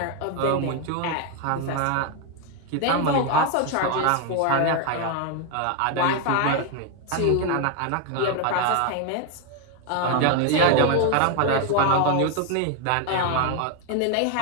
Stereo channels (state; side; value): different; both; correlation 0.01